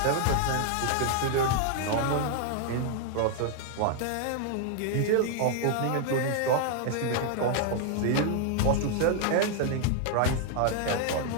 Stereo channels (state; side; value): different; both; correlation 0.00